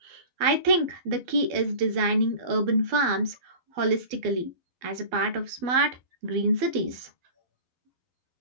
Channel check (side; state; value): left; late; 12 ms